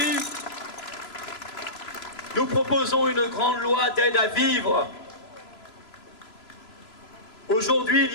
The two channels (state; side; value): late; right; 3.0 ms